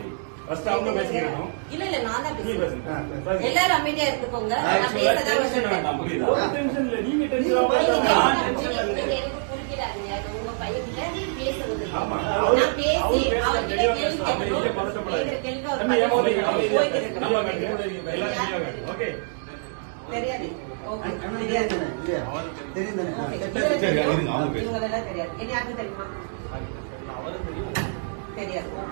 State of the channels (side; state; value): left; silent; digital silence